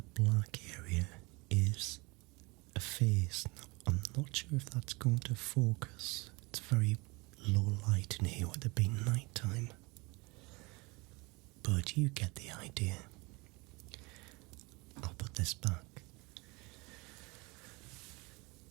black area is a face. Now, I'm not sure if that's going to focus. It's very low light in here with it being night time. But you get the idea. I'll put this back.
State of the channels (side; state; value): left; quieter; 26.3 dB